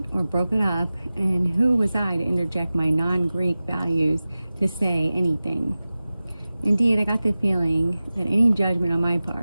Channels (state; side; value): inverted; both; correlation -0.96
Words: or broke it up, and who was I to interject my non-Greek values to say anything? Indeed, I got the feeling that any judgment on my